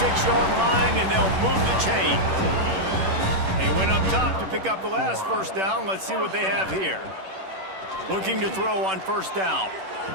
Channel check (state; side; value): late; left; 10 ms